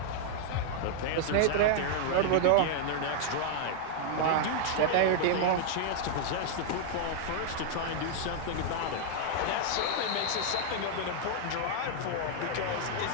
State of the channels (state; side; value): different; both; correlation -0.01